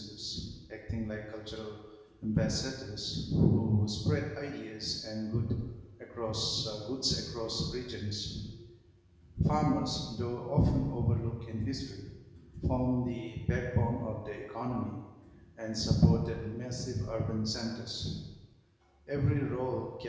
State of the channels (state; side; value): identical; both; correlation 1.00